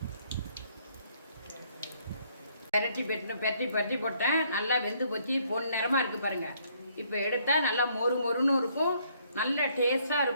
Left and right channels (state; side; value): inverted; both; correlation -0.67